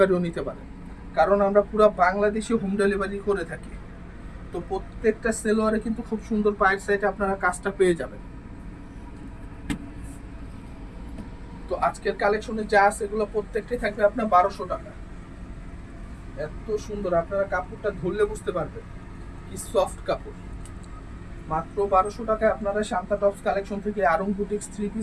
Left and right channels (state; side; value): identical; both; correlation 1.00